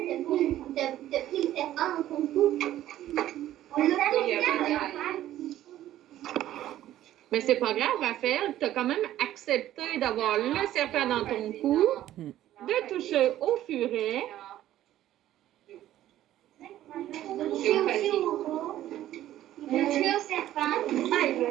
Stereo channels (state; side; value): quieter; left; 13.2 dB